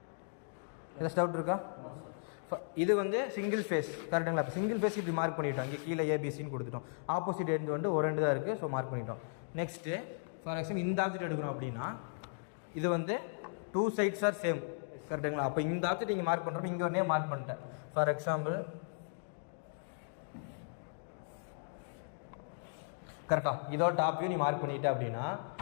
இது வந்து சிங்கிள் ஃபேஸ் கரெக்டுங்களா? இப்போ சிங்கிள் ஃபேஸ் இப்படி மார்க் பண்ணிட்டோம். இங்கே கீழே ஏபிசின்னு கொடுத்துட்டோம். ஆப்போசிட் எண்ட் வந்து ஒரு ரெண்டு தான் இருக்குது, ஸோ மார்க் பண்ணிட்டோம். நெக்ஸ்ட்டு ஃபார் எக்ஸாம்பிள் இந்த ஆப்ஜெக்ட் எடுக்கிறோம் அப்படின்னா இது வந்து 2 சைட்ஸ் ஆர் சேம் கரெக்டுங்களா? அப்போ இந்த ஆப்ஜெக்ட் இங்கே மார்க் பண்ணுறப்ப இங்கே ஒரு நேம் மார்க் பண்ணிட்டேன். ஃபார் எக்ஸாம்பிள் கரெக்டாக இதோட டாப் வியூ நீ மார்க் பண்ணிட்ட அப்படின்னா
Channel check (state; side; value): silent; right; digital silence